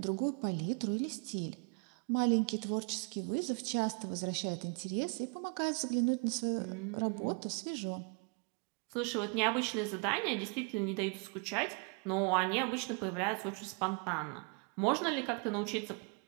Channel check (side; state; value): left; quieter; 35.7 dB